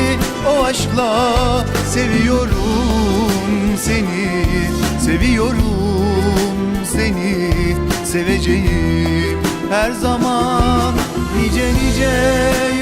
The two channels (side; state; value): both; identical; correlation 1.00